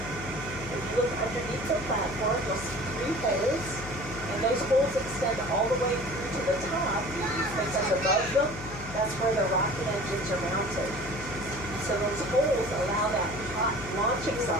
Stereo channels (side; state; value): left; noise; hum, 12 dB below the sound